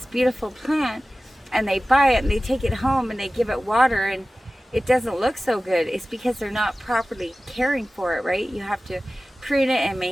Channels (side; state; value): both; normal; correlation 0.96